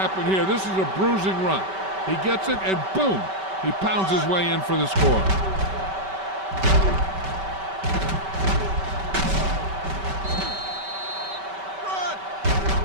here. This is a bruising run. He gets it, and boom, he pounds his way in for the score.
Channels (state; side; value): late; left; 5.2 ms